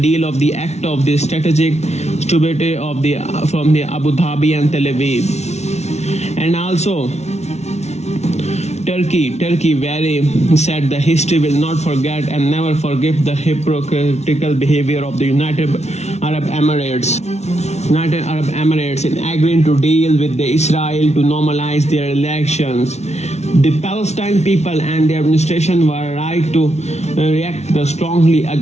of the act of the strategic stability from the Abu Dhabi and Tel Aviv. And also Turkey very said the history will not forget and never forgive the hypocritical behavior of the United Arab Emirates in agreeing to deal with the Israel to normalize their relations. The Palestine people and their administration were right to react strongly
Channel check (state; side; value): late; right; 0.32 ms